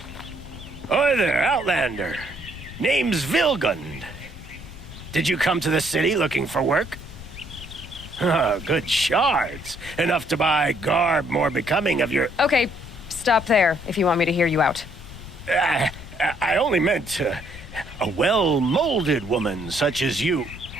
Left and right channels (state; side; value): noise; left; rumble, 14 dB below the sound